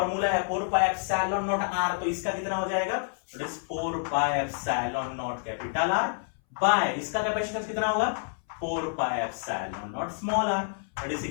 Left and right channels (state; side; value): silent; right; 59 dB below the other